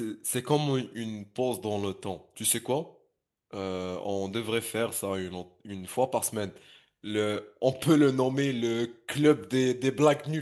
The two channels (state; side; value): identical; both; correlation 1.00